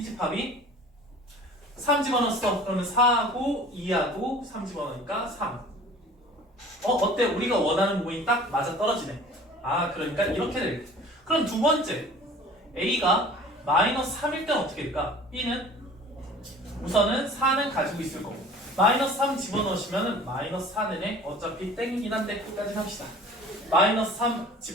집합이 3 집어넣었어. 그러면 4하고 2하고 3 집어넣으니까 3. 어때? 우리가 원하는 부분이 딱 맞아 떨어지네. 아, 그러니까 이렇게 되겠다. 그럼 두 번째, A가 마이너스 3일 때는 어떻게 될까? B는 우선은 4는 가지고 있을 거고 마이너스 3 집어넣으시면 마이너스 4는 어차피 땡이긴 한데 끝까지 합시다. 마이너스 3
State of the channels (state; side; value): normal; both; correlation 0.45